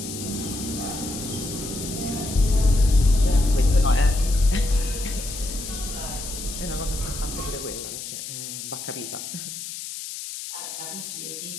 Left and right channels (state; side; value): noise; left; hiss, 8 dB below the sound